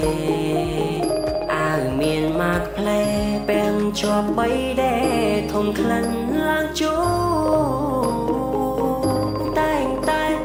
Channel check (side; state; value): both; identical; correlation 1.00